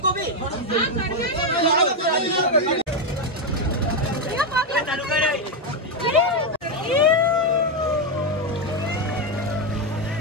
भी चालू कर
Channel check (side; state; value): both; normal; correlation 0.05